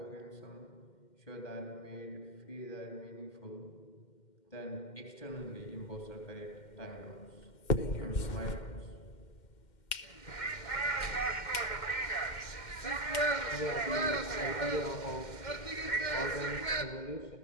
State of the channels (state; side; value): late; right; 2.1 ms